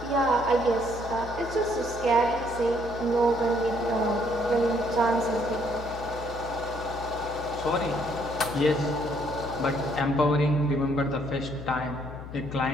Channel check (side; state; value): left; noise; hum, 12 dB below the sound